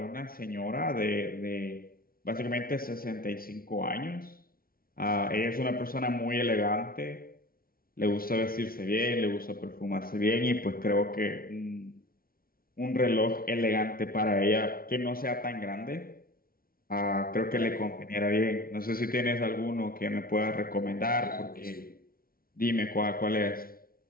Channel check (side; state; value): right; late; 0.43 ms